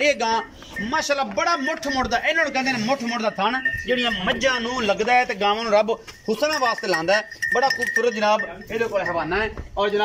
गां माशाअल्लाह बड़ा मुठ मुड़दा, इन्हां नूं कहंदे ने मुठ मुड़दा थण जिहड़ियां मज्झां नूं लगदा है ते गावां नूं रब हुसना वास्ते लांदा है। बड़ा खूबसूरत जनाब इहदे कोल हवाना है और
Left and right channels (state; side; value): identical; both; correlation 1.00